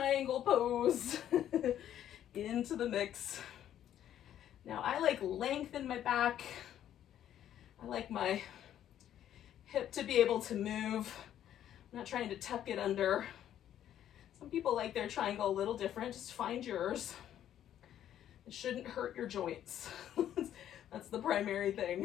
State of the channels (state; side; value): quieter; right; 11.0 dB